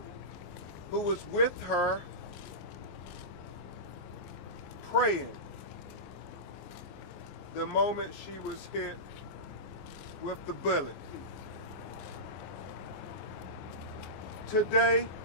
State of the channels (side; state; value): right; late; 27 ms